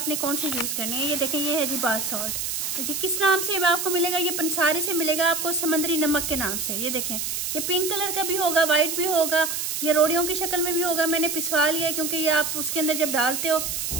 कौन सी यूज़ करनी है। ये देखें, ये है जी बाथ सॉल्ट। तो ये किस नाम से आपको मिलेगा? ये पंसारी से मिलेगा आपको, समंदरी नमक के नाम से। ये देखें, ये पिंक कलर का भी होगा, व्हाइट भी होगा, ये रोड़ियों की शक्ल में भी होगा। मैंने पिसवा लिया है क्योंकि ये आप उसके अंदर जब डालते हो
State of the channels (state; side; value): noise; right; hiss, 2 dB below the sound